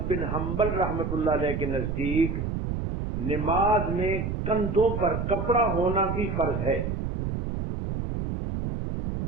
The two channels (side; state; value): right; noise; rumble, 3 dB below the sound